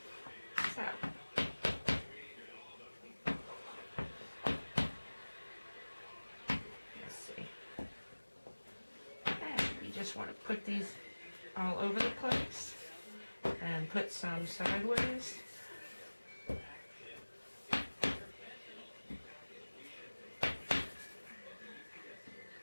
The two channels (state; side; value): inverted; both; correlation -1.00